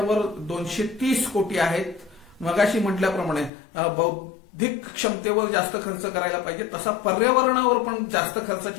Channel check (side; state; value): right; drops out; at 3.5 s